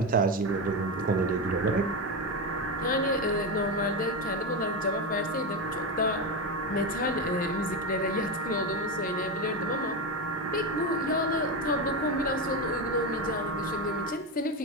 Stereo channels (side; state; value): both; normal; correlation 0.14